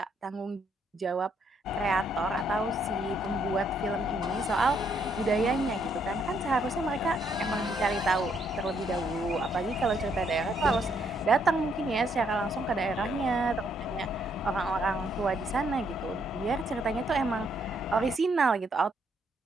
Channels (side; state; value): both; normal; correlation 0.72